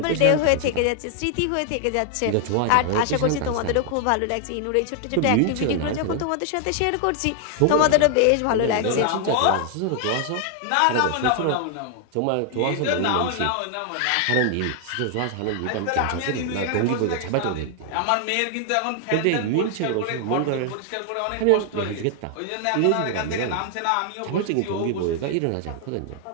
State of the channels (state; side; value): different; both; correlation 0.00